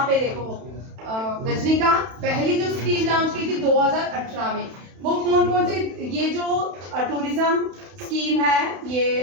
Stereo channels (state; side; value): late; left; 31 ms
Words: पे देखो रजनीकांत, पहली जो स्कीम लॉन्च की थी 2018 में, वो कौन से, ये जो टूरिज्म स्कीम है,